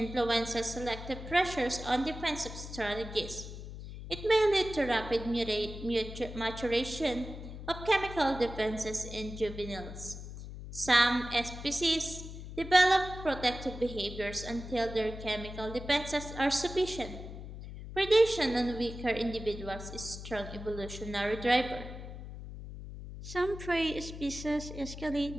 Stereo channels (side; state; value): left; noise; hum, 11 dB below the sound